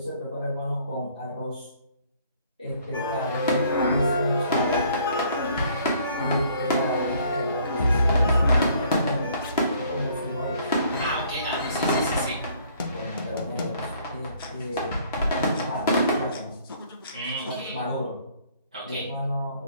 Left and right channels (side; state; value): both; inverted; correlation -0.60